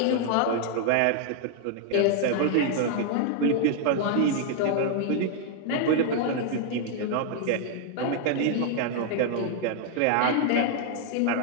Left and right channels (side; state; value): both; different; correlation -0.01